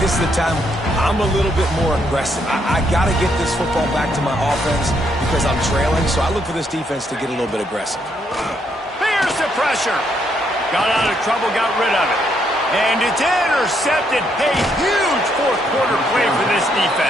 is the time I'm a little bit more aggressive. I got to get this football back to my offense because I'm trailing. So I look for this defense to get a little bit aggressive. Here's the pressure. Got out of trouble, got rid of it. And it's intercepted. A huge 4th quarter play for this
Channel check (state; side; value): normal; both; correlation 0.74